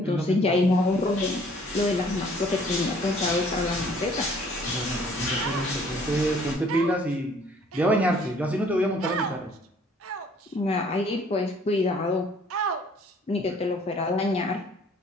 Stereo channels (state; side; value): normal; both; correlation 0.58